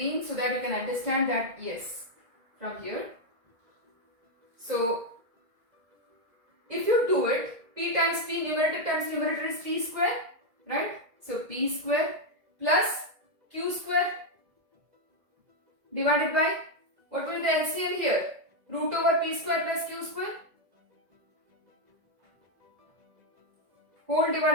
so that you can understand that yes, from here. So if you do it, P times P, numerator is P square, right? So P square plus Q square divided by, what will be the LCM here? Root over P square plus Q square. Whole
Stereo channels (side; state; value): left; late; 2.0 ms